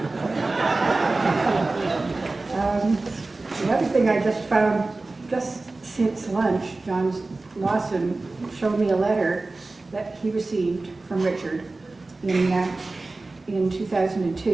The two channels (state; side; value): quieter; left; 3.3 dB